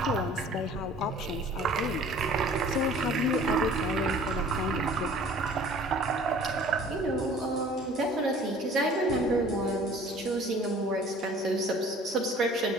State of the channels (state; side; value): normal; both; correlation 0.49